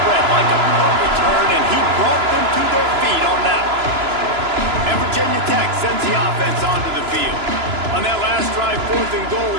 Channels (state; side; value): late; left; 3.0 ms